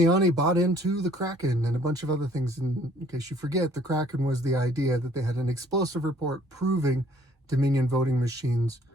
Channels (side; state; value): both; normal; correlation 0.59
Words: bought into the Kraken and a bunch of other things. And in case you forget, the Kraken was the idea that they had an explosive report proving Dominion voting machines